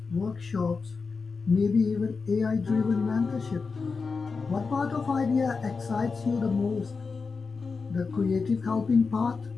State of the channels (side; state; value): right; quieter; 4.7 dB